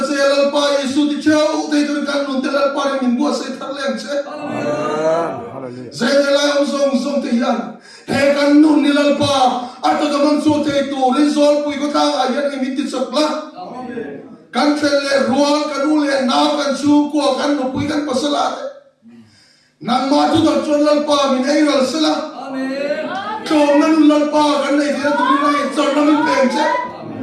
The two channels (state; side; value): identical; both; correlation 1.00